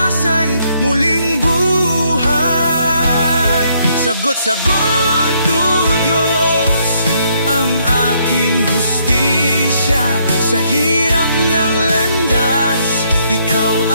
muling buhay. Sagot-sagot, o Diyos, ang aking hustisya. Sa hirap ng landas, ikaw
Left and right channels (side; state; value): both; inverted; correlation -0.71